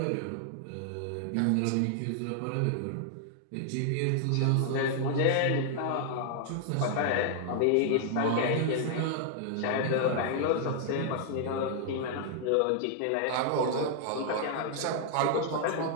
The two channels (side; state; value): both; different; correlation -0.01